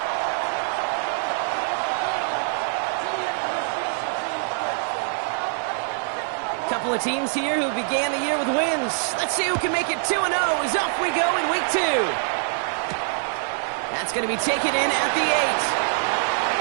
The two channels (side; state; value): left; silent; 62 dB below the other